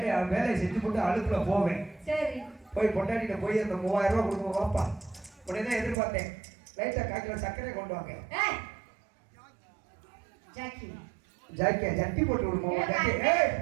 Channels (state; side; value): drops out; left; at 6.0 s